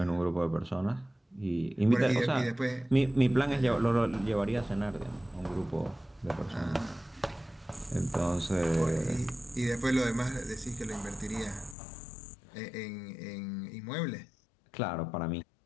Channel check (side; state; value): right; drops out; at 11.8 s